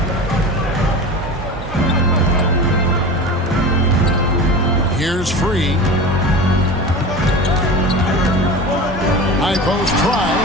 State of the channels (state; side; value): normal; both; correlation 0.32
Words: Here's Free. High post try.